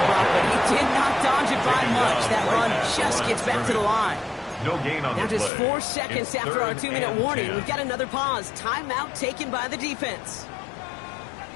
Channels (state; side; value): drops out; right; at 5.5 s